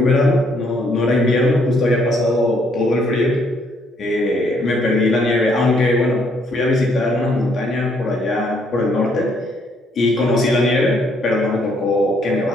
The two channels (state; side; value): normal; both; correlation 0.69